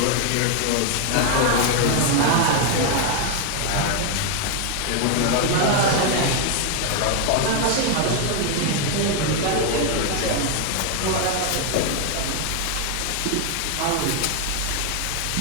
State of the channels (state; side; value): different; both; correlation 0.01